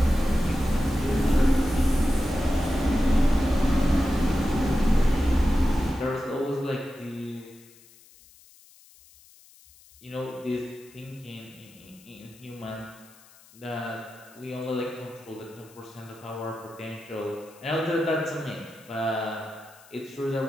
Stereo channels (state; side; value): noise; left; hiss, 25 dB below the sound